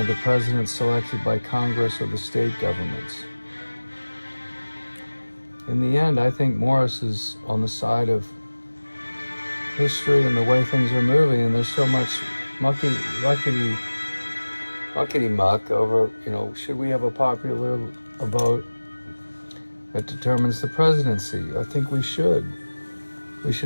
the president selected by Congress or the state governments. In the end, I think Morris is on the side of history and the way things are moving, and there's so much muckety-muck over, should we have a popular vote that determines the presidency? I think we should. We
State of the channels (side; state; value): both; inverted; correlation -1.00